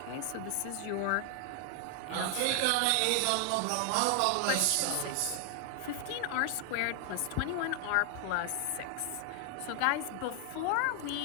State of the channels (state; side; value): different; both; correlation 0.00